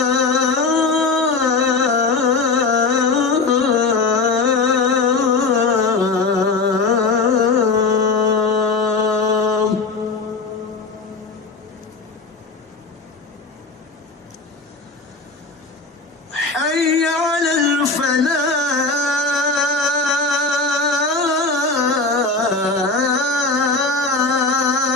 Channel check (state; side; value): quieter; right; 4.0 dB